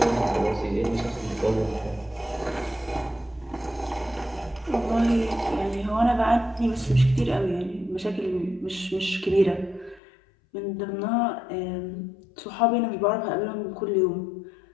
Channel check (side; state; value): right; drops out; at 10.0 s